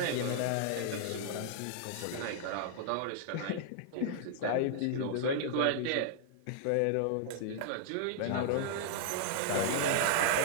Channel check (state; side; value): different; both; correlation -0.01